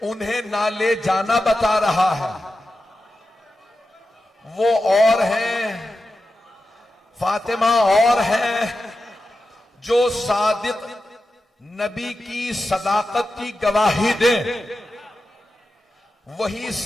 उन्हें ना ले जाना बता रहा है। वो और हैं, फातिमा और हैं, जो सादिक नबी की सदाकत की गवाही दे, वही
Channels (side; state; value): both; normal; correlation 0.91